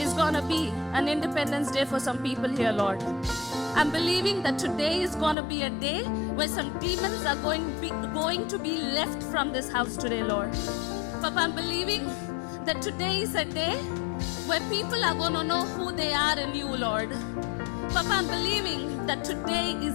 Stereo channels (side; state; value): right; drops out; at 5.4 s